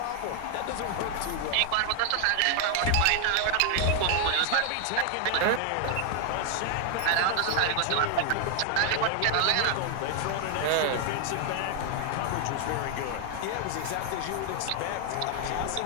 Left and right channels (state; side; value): different; both; correlation 0.00